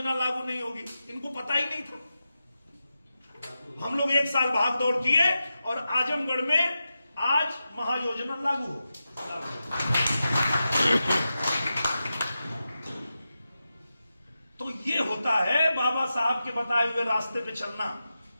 लागू नहीं होगी। इनको पता ही नहीं था। हम लोग 1 साल भाग दौड़ किए और आजमगढ़ में आज महायोजना लागू हो। तो ये होता है बाबा साहब के बताए हुए रास्ते पे चलना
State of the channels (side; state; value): both; inverted; correlation -0.91